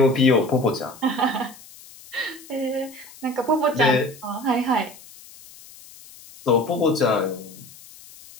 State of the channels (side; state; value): left; noise; hiss, 20 dB below the sound